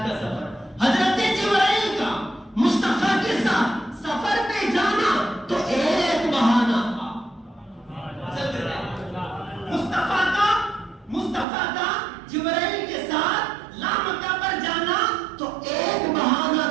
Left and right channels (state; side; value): drops out; left; at 11.5 s